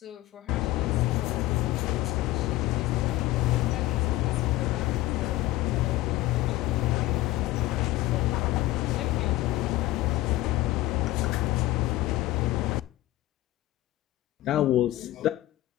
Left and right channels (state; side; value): quieter; right; 16.7 dB